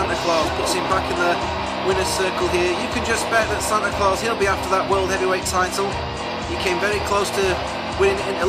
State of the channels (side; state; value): both; identical; correlation 1.00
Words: Claus, puts him back in the winner's circle here. You can just bet that Santa Claus, he'll be after that World Heavyweight title. He came very close to winning in